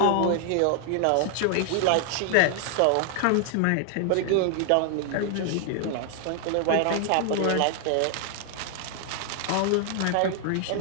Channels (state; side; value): different; both; correlation 0.00